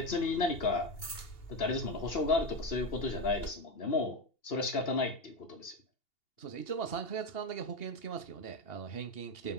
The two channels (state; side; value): late; right; 2.8 ms